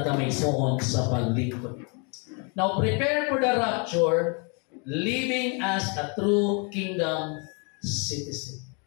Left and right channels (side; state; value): right; quieter; 35.3 dB